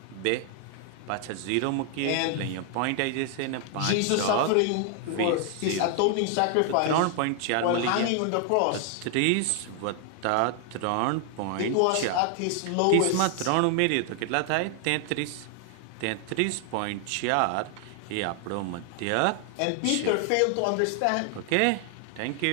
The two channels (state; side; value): different; both; correlation 0.00